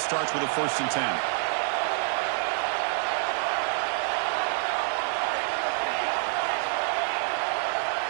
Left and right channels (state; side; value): silent; left; digital silence